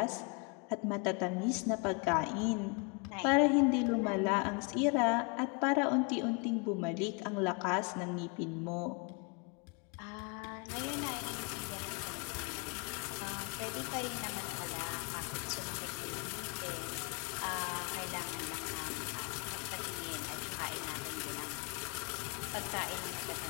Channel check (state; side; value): quieter; right; 33.0 dB